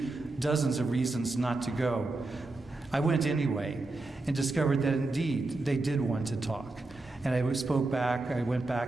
dozens of reasons not to go. I went anyway and discovered that indeed they did want to talk. And I went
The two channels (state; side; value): quieter; left; 3.1 dB